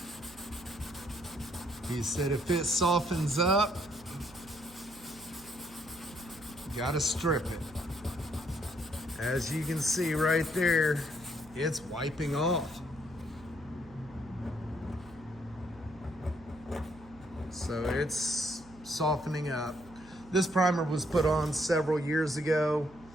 He said if it softens up, you gotta strip it. As you can see right there, it's wiping off. So it's softening up. This primer was put on several years ago,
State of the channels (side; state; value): right; noise; hum, 22 dB below the sound